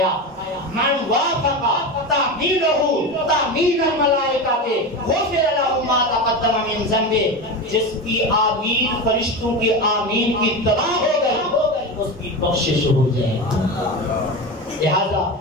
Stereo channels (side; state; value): both; normal; correlation 0.22